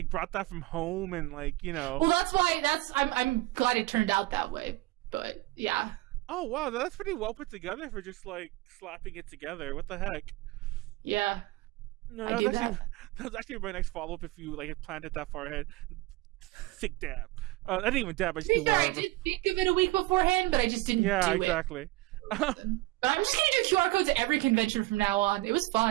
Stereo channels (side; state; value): left; quieter; 19.3 dB